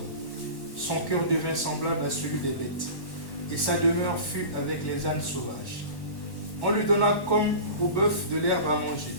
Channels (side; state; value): right; late; 1.1 ms